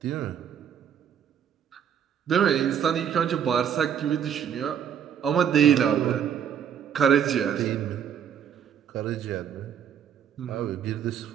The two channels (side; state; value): left; quieter; 8.6 dB